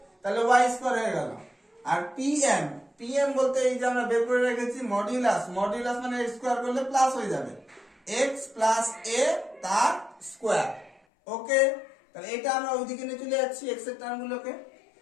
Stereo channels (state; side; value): drops out; right; at 11.0 s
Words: তাহলে y স্কয়ার হয়ে গেল। আর pm বলতে এই যে আমরা বের করে রেখেছি মডুলাস, মডুলাস মানে স্কয়ার করলে প্লাস হয়ে যাবে, x + a তার স্কয়ার। ওকে, তাহলে এটা আমরা ওইদিকে নিয়ে চলে যাচ্ছি x এর টার্মগুলোকে।